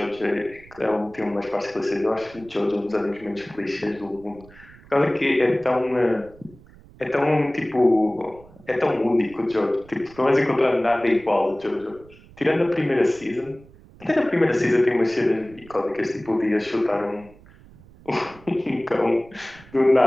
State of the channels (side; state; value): right; noise; rumble, 23 dB below the sound